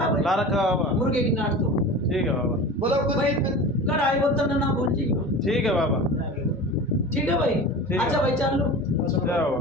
भाई, ला रखा बाबा। मुर्गे की नाट दो ठीक है बाबा। बोलो कुछ भाई, कढ़ाई बोतल ना भूलिएगा। ठीक है बाबा। ठीक है भाई। है। अच्छा भाई चालू। जाओ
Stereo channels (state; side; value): normal; both; correlation 0.33